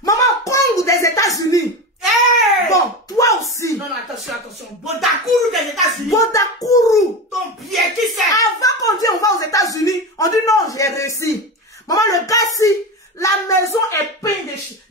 Maman, Congo des États-Unis. Hey! Bon, toi aussi. Non, non, attention, attention. Bodakourou des États-Unis. Bodakourou. Ton pied, qui c'est? Avant qu'on dise on va aux États-Unis, on dit non, j'ai réussi. Maman, le gars si, la maison est peinte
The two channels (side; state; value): both; normal; correlation 0.22